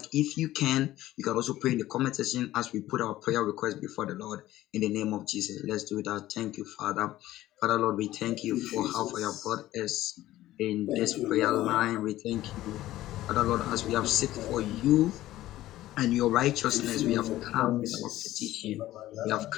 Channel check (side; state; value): right; quieter; 15.1 dB